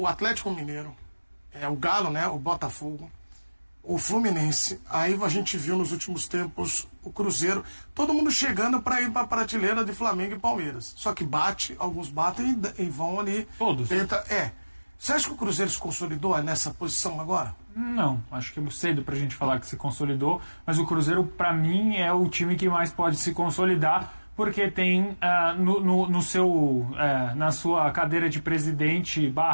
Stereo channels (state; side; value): inverted; both; correlation -1.00